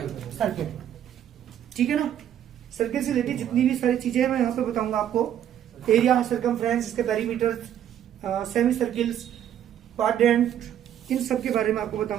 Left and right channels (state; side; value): quieter; left; 10.4 dB